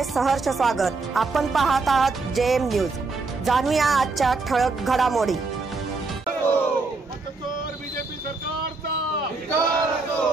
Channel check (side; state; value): left; quieter; 3.8 dB